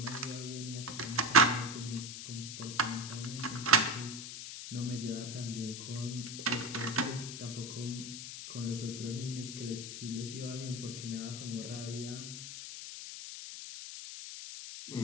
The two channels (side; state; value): left; noise; hiss, 8 dB below the sound